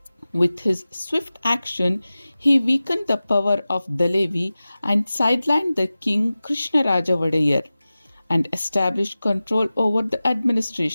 With his swift action, he weakened the power of Dalevi and sidelined the king Krishnaraja Wadayar and established control over the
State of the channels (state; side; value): inverted; both; correlation -0.96